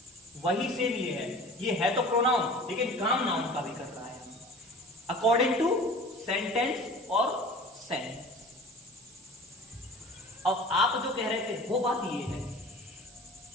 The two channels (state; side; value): noise; right; hiss, 23 dB below the sound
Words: वही सेम ये है तो प्रोनाउन, लेकिन काम नाउन का भी कर रहा है, अकॉर्डिंग टू सेंटेंस और सेंस। अब आप जो कह रहे थे वो बात ये है,